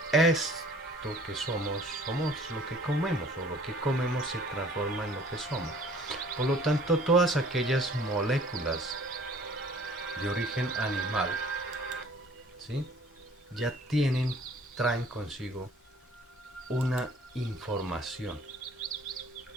esto que somos lo que comemos, o lo que comemos se transforma en lo que somos. Por lo tanto, todas aquellas moléculas de origen animal, ¿sí? Ya traen consigo una información,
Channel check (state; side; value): normal; both; correlation 0.53